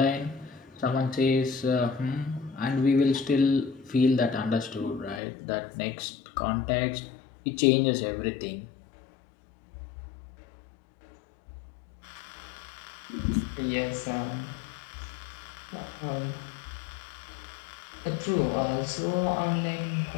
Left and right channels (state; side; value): drops out; right; at 5.2 s